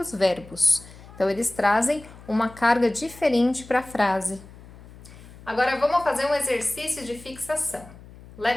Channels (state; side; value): noise; left; hum, 20 dB below the sound